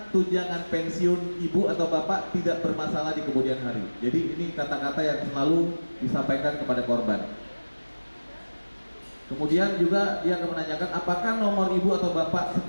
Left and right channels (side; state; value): both; inverted; correlation -1.00